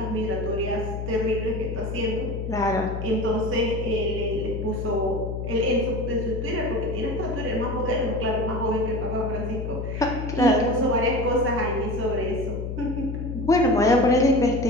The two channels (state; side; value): noise; left; hum, 5 dB below the sound